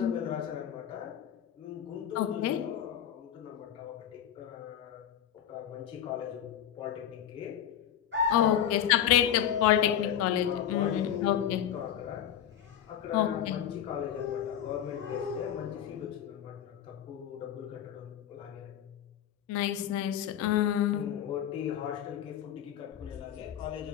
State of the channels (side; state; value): right; quieter; 10.1 dB